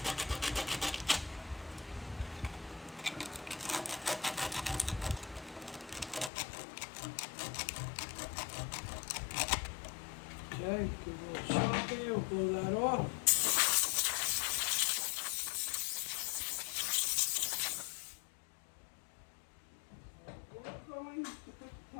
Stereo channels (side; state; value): right; drops out; at 6.3 s